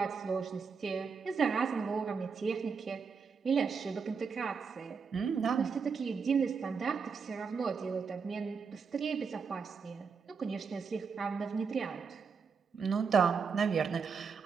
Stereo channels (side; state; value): left; quieter; 5.6 dB